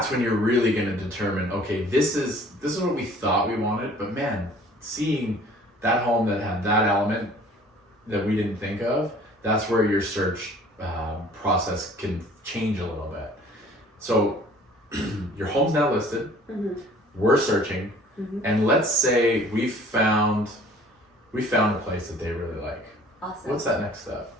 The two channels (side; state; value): both; normal; correlation 0.52